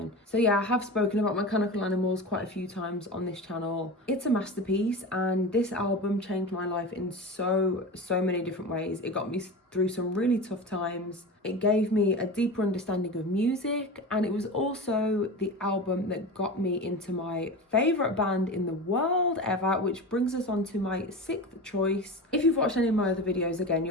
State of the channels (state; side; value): normal; both; correlation 0.28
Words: So yeah, I have spoken about Mechanical Animals quite a few times on this channel. It's a masterpiece, and this album changed my life in so many different ways. It got me through some really tough times. It gave me a deeper understanding of music, and it was also the album that got me into my favourite band in the world ever, which brings us on to my sixth choice. If you've watched any of my other videos, again,